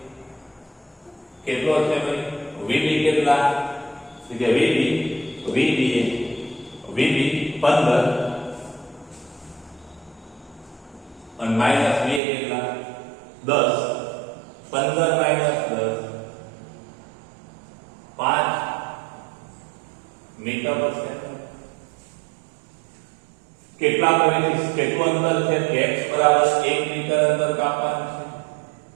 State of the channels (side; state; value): left; drops out; at 12.2 s